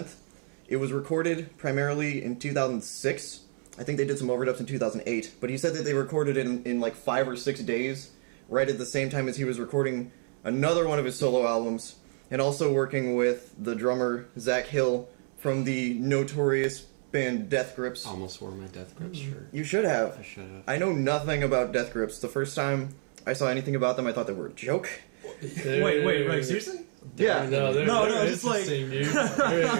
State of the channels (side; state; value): left; silent; 59 dB below the other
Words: It was recorded primarily in 2006. I think they did some overdubs in 2008. But he said that they recorded it in like, 5 or 6 days, right at the same time as he was recording another one of his solo albums, and also working with the drummer, Zach Hill, from the notorious band Death Grips. Almost wore my Death Grips shirt. You should have. I should have. I know nothing about Death Grips. The first time I saw anything about them, I thought they were a joke. Wait, seriously? Yeah. They're just like- interesting, dude.